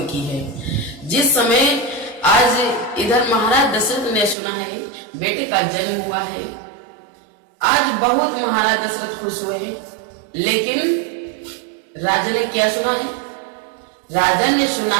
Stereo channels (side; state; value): left; drops out; at 4.4 s